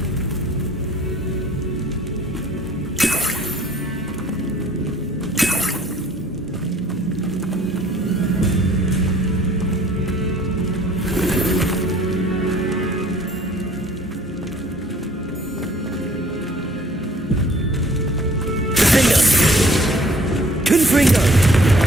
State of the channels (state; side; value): normal; both; correlation 0.55